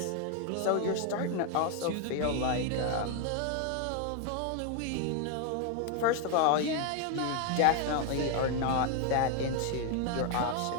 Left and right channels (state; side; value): different; both; correlation 0.01